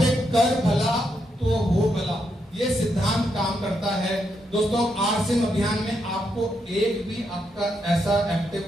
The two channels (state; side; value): normal; both; correlation 0.80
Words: कर भला तो हो भला, ये सिद्धांत काम करता है। दोस्तों आरसीएम अभियान में आपको एक भी आपका ऐसा एक्टिव